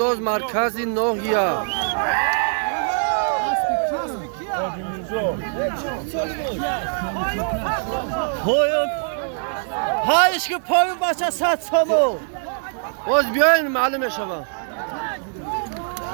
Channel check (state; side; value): silent; left; digital silence